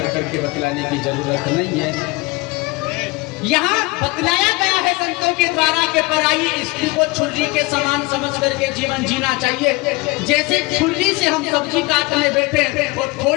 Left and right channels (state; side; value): quieter; right; 24.0 dB